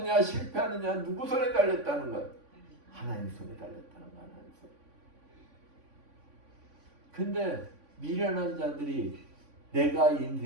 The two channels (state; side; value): late; left; 3.5 ms